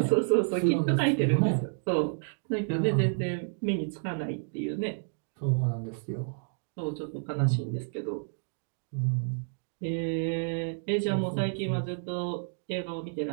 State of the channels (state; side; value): silent; left; digital silence